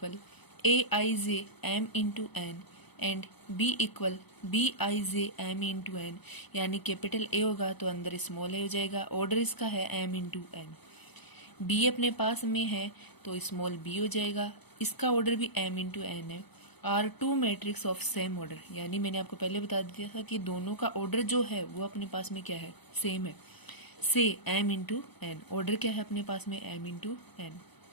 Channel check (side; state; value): right; late; 0.99 ms